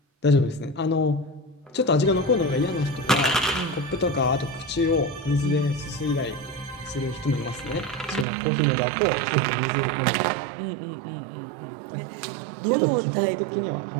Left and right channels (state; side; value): drops out; left; at 8.2 s